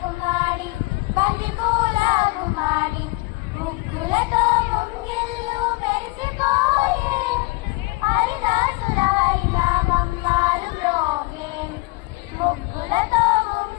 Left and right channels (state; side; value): quieter; right; 23.6 dB